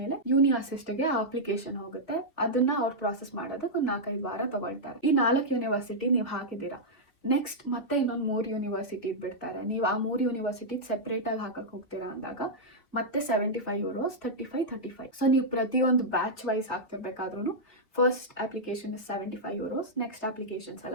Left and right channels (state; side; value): late; right; 2.7 ms